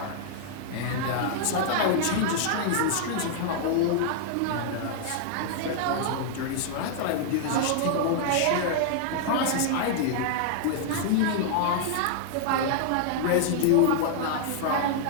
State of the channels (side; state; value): both; different; correlation -0.01